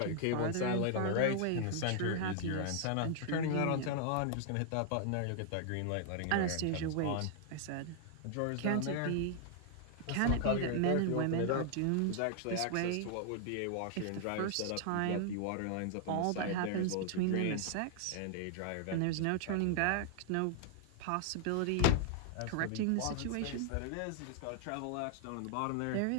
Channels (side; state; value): both; different; correlation 0.00